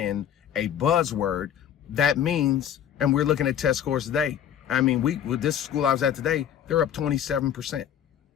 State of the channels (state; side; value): quieter; right; 9.6 dB